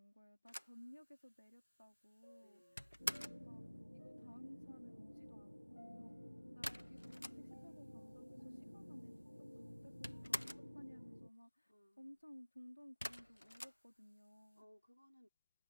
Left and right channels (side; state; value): both; inverted; correlation -1.00